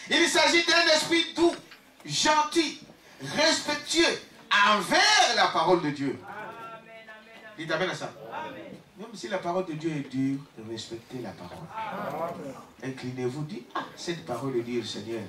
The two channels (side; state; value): both; identical; correlation 1.00